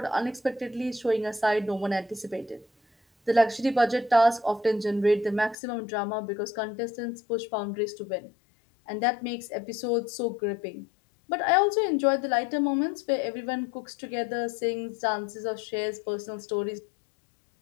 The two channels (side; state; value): right; drops out; at 5.6 s